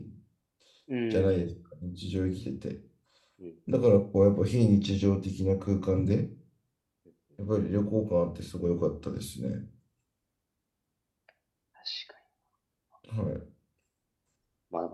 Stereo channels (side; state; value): both; identical; correlation 1.00